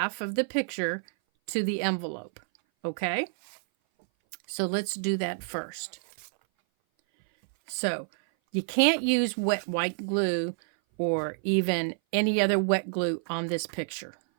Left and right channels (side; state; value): left; silent; 57 dB below the other